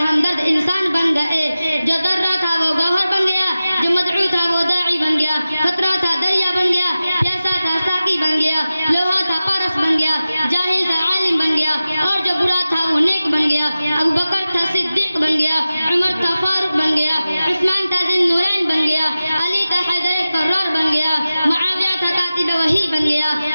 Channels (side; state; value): both; inverted; correlation -0.95